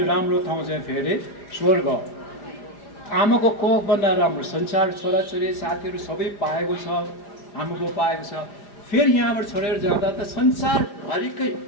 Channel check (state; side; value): late; right; 5.0 ms